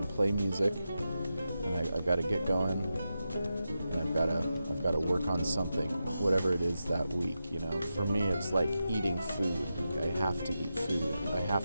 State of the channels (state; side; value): inverted; both; correlation -0.89